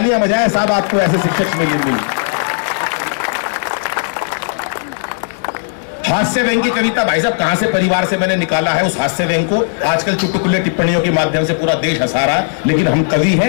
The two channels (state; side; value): silent; right; digital silence